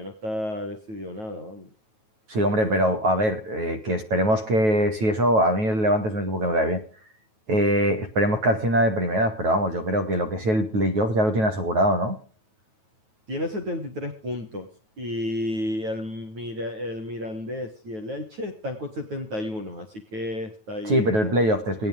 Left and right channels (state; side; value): late; left; 9.3 ms